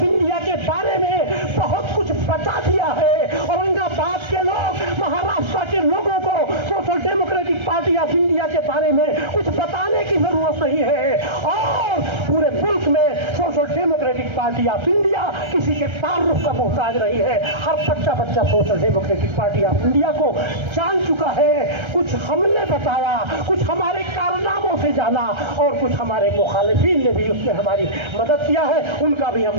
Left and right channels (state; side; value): late; left; 1.3 ms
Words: के बारे में बहुत कुछ बता दिया है। औरंगाबाद के लोग, महाराष्ट्र के लोगों को social democratic party of India के बारे में कुछ बताने की जरूरत नहीं है, और पूरे मुल्क में social democratic party of India किसी के ताल्लुक का मोहताज रही है। हर बच्चा social democratic party of India को जान चुका है। कुछ हमने बताया, कुछ हमारे कारनामों से जाना, और कुछ हमारे मुखालिफिन ने भी उसमें हमारी मदद किया है। उनका भी